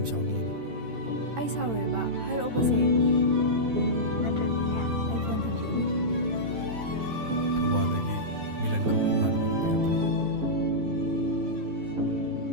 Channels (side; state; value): left; late; 13 ms